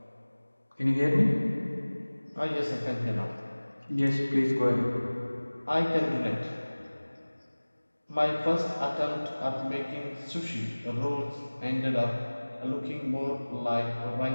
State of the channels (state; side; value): inverted; both; correlation -1.00